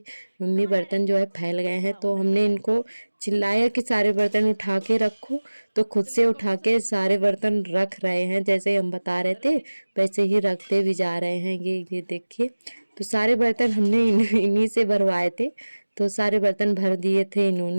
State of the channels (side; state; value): both; inverted; correlation -1.00